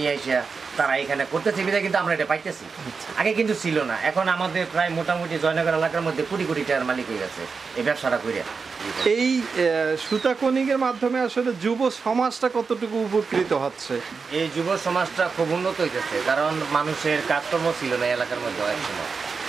এসে তারা এখানে করতেছে, বিধায় কিন্তু আমরা এটা পাইতেছি। আগে কিন্তু ছিল না। এখন আমাদের প্রায় মোটামুটি জয়নগর এলাকার মধ্যে কোটি কোটি টাকার মালিক হয়ে গেছে এই ব্যবসাটা করে। এই সুতা কোনিংয়ের মাধ্যমে আসলে যুব সমাজটা কতটুকু উপকৃত হচ্ছে? এই যুব সমাজটা খুব উন্নত হইতেছে, কারণ মানুষের কাজকর্ম ছিল না এলাকার মধ্যে এক সময়।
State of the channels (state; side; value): quieter; left; 5.0 dB